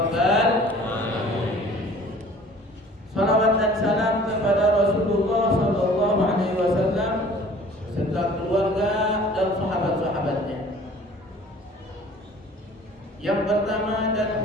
alamin. Salawat dan salam kepada Rasulullah sallallahu alaihi wasallam serta keluarga dan sahabat-sahabatnya. Yang pertama dan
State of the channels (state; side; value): normal; both; correlation 0.49